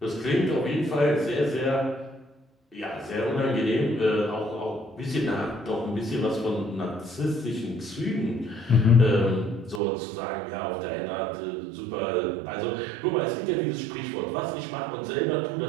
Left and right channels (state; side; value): drops out; left; at 9.8 s